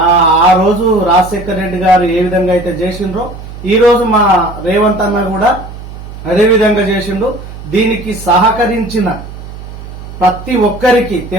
ఆ రోజు రాజశేఖర రెడ్డి గారు ఏ విధంగా అయితే చేసిండ్రో, ఈ రోజు మా రేవంత్ అన్న కూడా అదేవిధంగా చేసిండు. దీనికి సహకరించిన ప్రతి ఒక్కరికి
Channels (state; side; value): noise; right; hum, 13 dB below the sound